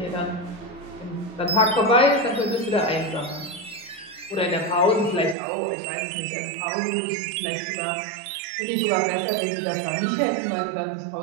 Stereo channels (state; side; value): drops out; left; at 5.4 s